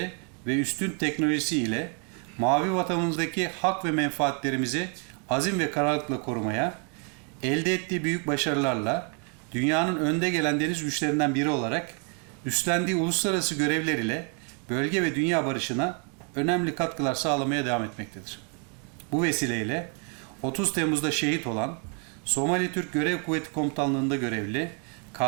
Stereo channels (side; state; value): left; quieter; 39.0 dB